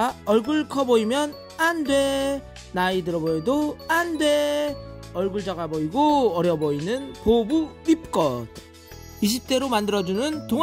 얼굴 커 보이면 안돼. 나이 들어 보여도 안돼. 얼굴 작아 보이고 어려 보이는 보부 립컷 20대로 만들어주는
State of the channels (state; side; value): identical; both; correlation 1.00